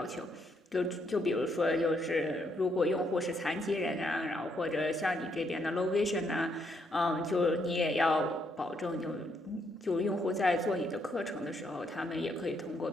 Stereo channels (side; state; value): both; normal; correlation 0.75